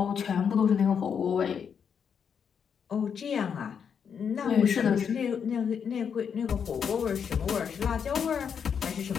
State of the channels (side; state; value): right; quieter; 7.1 dB